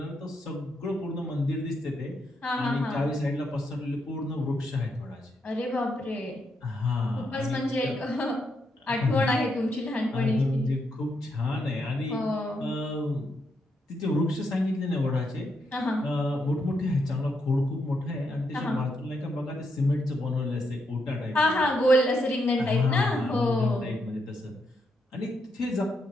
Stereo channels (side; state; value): both; normal; correlation 0.79